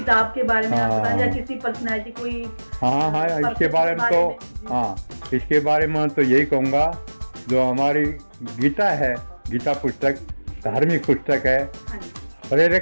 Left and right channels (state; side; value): inverted; both; correlation -1.00